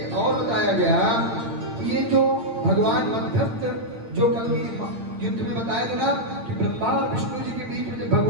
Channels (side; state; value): left; late; 8.8 ms